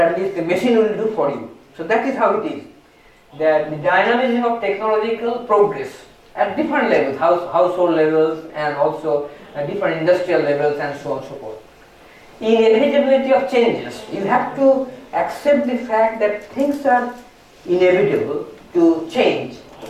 least the machine will do for you. So that is how it is. That the dynamism of technological progress at different levels, household levels, and also at different industrial levels, and so on and so forth. Inevitability of changes. You have to accept the fact that things are inevitable to change,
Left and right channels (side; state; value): both; identical; correlation 1.00